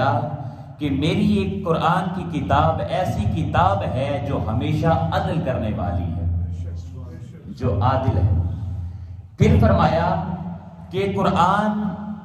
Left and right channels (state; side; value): identical; both; correlation 1.00